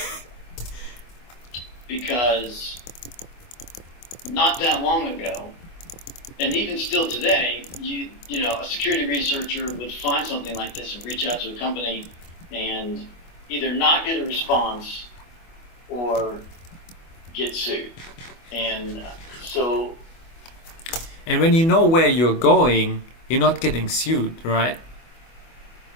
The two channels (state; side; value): late; right; 24 ms